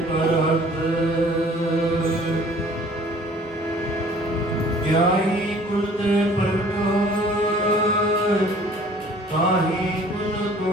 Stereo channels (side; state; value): both; normal; correlation 0.53